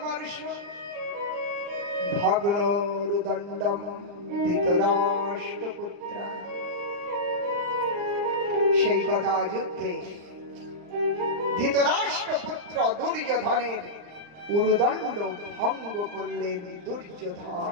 ভগ্নোরুদণ্ডম ধৃতরাষ্ট্রপুত্র। সেই গদা যুদ্ধে ধৃতরাষ্ট্রপুত্র দুর্যোধনের উরুদণ্ড ভঙ্গ করলেন।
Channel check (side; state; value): left; late; 39 ms